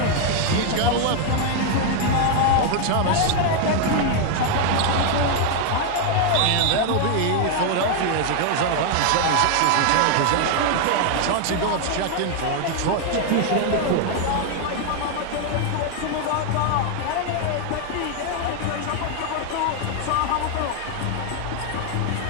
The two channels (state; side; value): different; both; correlation 0.00